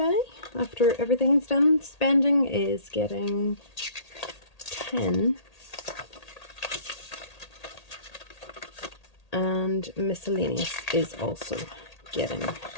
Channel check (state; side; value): late; right; 1.8 ms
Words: after everything's done. Spending is getting 10, and miscellaneous is also getting